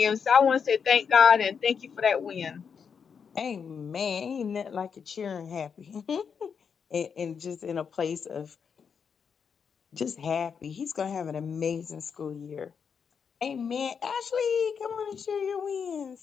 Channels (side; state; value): right; quieter; 6.5 dB